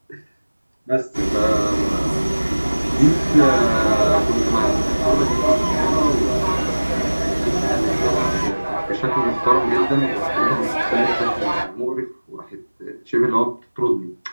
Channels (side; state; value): both; inverted; correlation -1.00